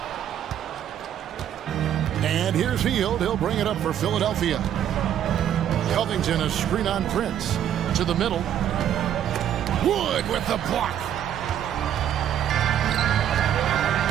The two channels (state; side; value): quieter; left; 10.3 dB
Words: And here's Hield. He'll bring it up for Philadelphia. Covington, a screen on Prince. To the middle. Wood with the block.